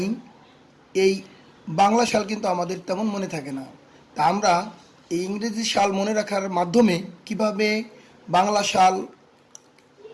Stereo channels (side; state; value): both; identical; correlation 1.00